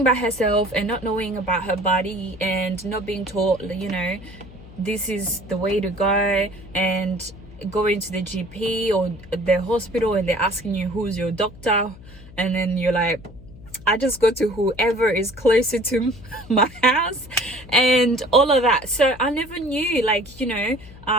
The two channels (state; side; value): noise; left; hum, 19 dB below the sound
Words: by herself and not knowing about her body and not being taught, you know, this is the way to go, and going to the GP or the hospital and they're asking you who's your doctor, and then you're like, I just go to whoever is closer to my house and all of that. So I never knew, like, you know,